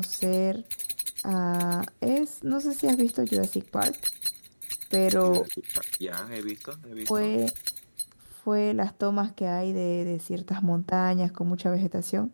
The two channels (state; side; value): inverted; both; correlation -1.00